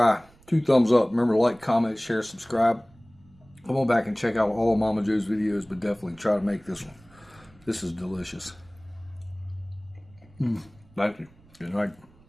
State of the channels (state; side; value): noise; right; rumble, 28 dB below the sound